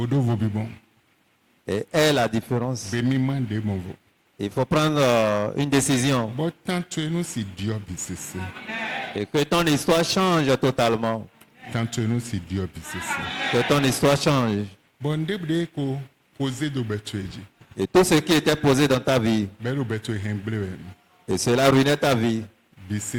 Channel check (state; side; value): identical; both; correlation 1.00